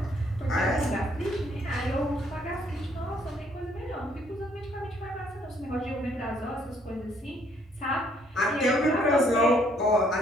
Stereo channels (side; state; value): both; normal; correlation 0.66